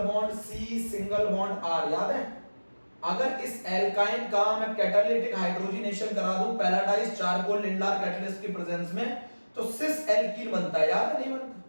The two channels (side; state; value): both; inverted; correlation -1.00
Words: bond C single bond R, याद है? अगर इस एल्काइन का मैं कैटालिटिक हाइड्रोजनेशन करा दूं पैराडाइज चारकोल लिंडार कैटलिस्ट की प्रेजेंस में, तो सिस एल्कीन बनता है, याद है? नहीं